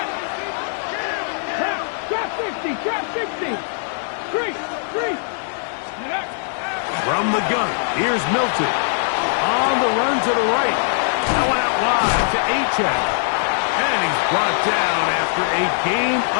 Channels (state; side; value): silent; right; digital silence